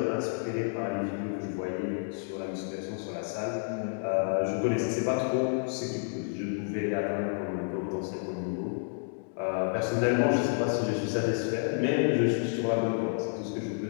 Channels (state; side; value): silent; right; 58 dB below the other